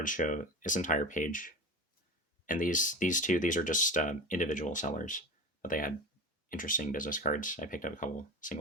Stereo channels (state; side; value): normal; both; correlation 0.29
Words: show, this entire page. And these two, these are just individual sellers, but they had interesting business cards. I picked up a couple